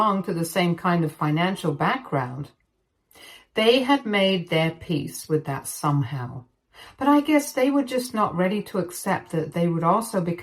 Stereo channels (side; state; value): both; identical; correlation 1.00